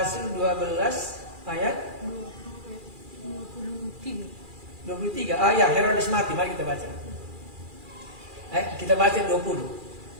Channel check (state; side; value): late; left; 2.4 ms